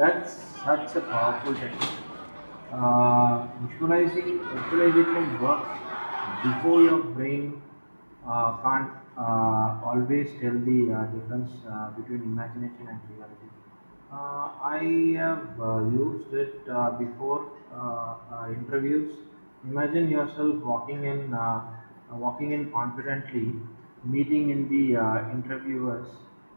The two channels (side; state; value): both; inverted; correlation -1.00